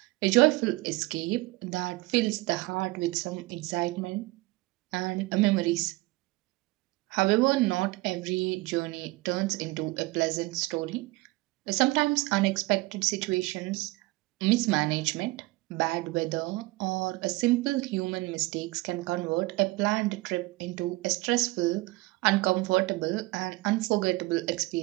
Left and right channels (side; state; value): left; quieter; 21.8 dB